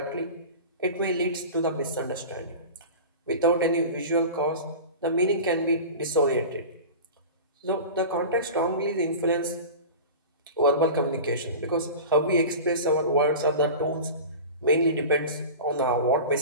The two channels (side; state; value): both; inverted; correlation -0.33